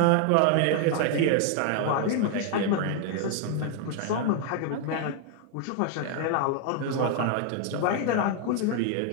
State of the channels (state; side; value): different; both; correlation 0.00